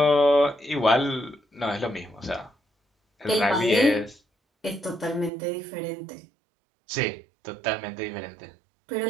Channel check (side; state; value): left; drops out; at 5.3 s